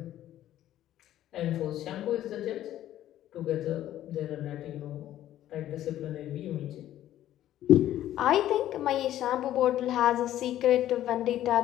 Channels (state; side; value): quieter; right; 12.8 dB